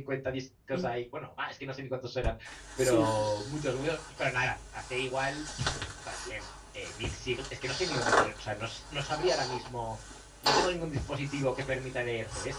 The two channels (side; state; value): both; identical; correlation 1.00